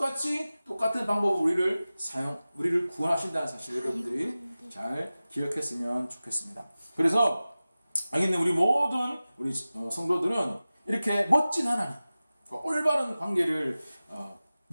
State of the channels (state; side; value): inverted; both; correlation -0.96